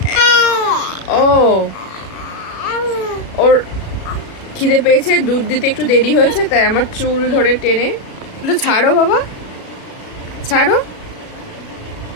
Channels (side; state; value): right; late; 36 ms